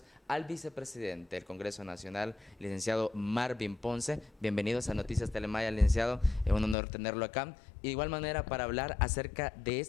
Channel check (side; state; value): right; drops out; at 6.8 s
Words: al vicepresidente del Congreso Nacional, licenciado Marvin Ponce. Bienvenidos a Noticias Telemaya, licenciado. Es un honor tenerlo acá. Y de igual manera para hablar acerca de